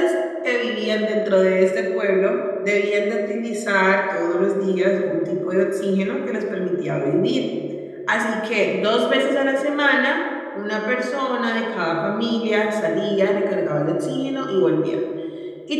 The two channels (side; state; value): both; identical; correlation 1.00